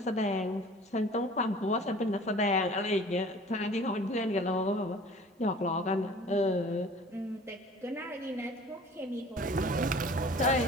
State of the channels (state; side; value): normal; both; correlation 0.47